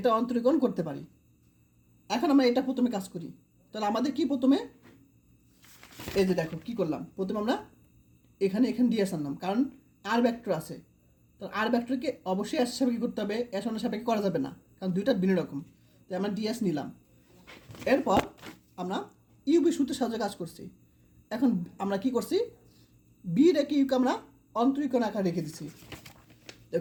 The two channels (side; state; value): both; identical; correlation 1.00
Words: অন্তরীকরণ করতে পারি। এখন আমরা এটা প্রথমে কাজ করি, তাহলে আমাদের কি প্রথমে এই যে দেখো কি করলাম, প্রথমে আমরা এখানে DS আনলাম, কারণ আর ভেক্টর আছে, তো আর ভেক্টরকে অবশ্যই S সাপেক্ষে করতে হবে, S1 এর সাপেক্ষে করা যাবে না, কারণ দুইটা ভিন্ন রকম, তাই আমরা DS নিলাম। এরপর আমরা ইউবি সূত্রের সাহায্যে কাজ করছি। এখন আমরা কি করছি, বি রেখে ইউকে আমরা অন্তরীকরণ আকারে রেখে দিছি,